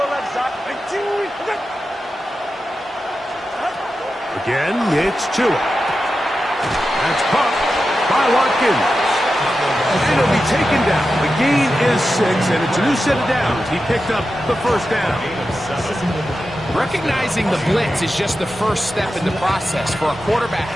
left side. Again, it's Tua. That's caught by Watkins. And it'll be taken down. The gain is 6, and it's a new set of downs. He picked up the 1st down. Recognizing the blitz is just the first step in the process for a quarterback,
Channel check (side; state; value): both; normal; correlation 0.91